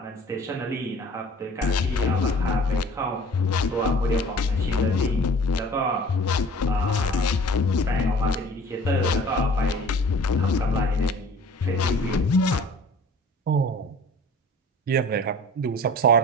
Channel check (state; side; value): normal; both; correlation 0.47